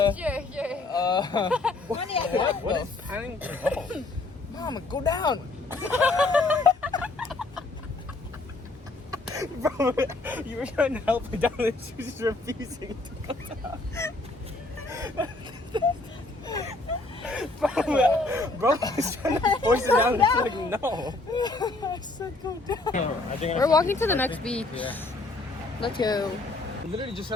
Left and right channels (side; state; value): right; quieter; 3.1 dB